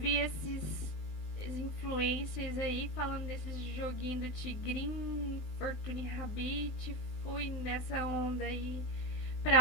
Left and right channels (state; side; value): late; right; 20 ms